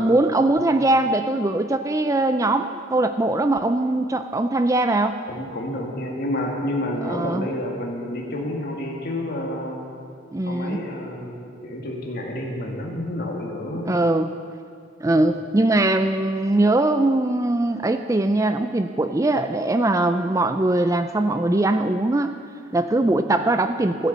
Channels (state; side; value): normal; both; correlation 0.69